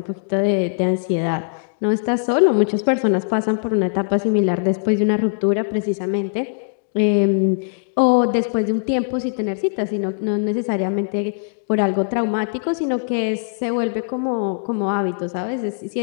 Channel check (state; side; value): silent; right; digital silence